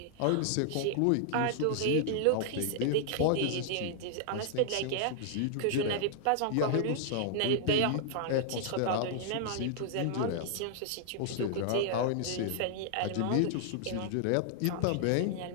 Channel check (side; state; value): both; different; correlation -0.01